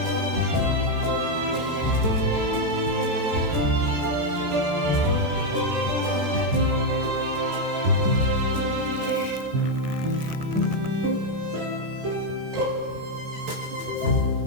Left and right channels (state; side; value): late; left; 13 ms